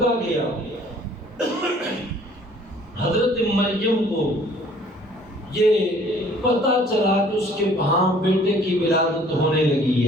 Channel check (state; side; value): normal; both; correlation 0.55